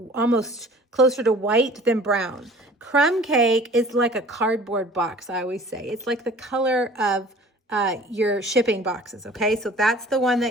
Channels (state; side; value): normal; both; correlation 0.48